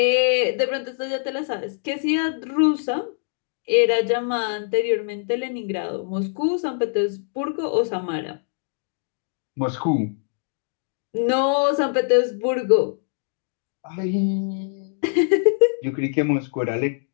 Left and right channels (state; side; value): silent; right; digital silence